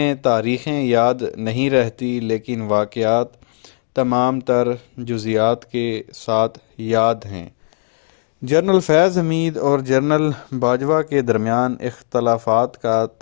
تاریخیں یاد نہیں رہتی، لیکن واقعات تمام تر جزیات کے ساتھ یاد ہیں۔ جنرل فیض حمید اور جنرل باجوہ کے درمیان اختلافات کا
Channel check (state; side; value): silent; right; digital silence